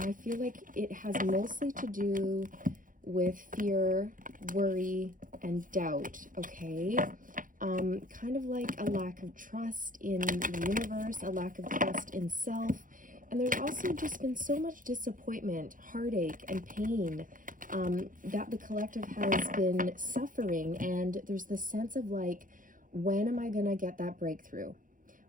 I feel like it has mostly to do with fear, worry, and doubt, okay? Kind of like a lack of trust in the universe, a lack of trust in self. And there's also just been so much disappointment, heartache, and pain that the collective has been suffering. And there's this sense of like, when am I gonna get that breakthrough?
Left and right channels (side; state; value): left; late; 0.39 ms